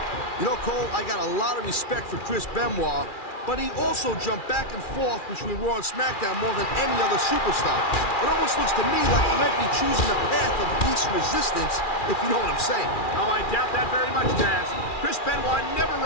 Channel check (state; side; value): late; right; 2.4 ms